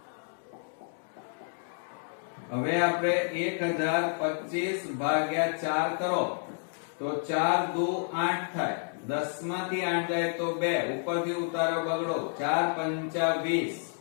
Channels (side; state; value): right; silent; 56 dB below the other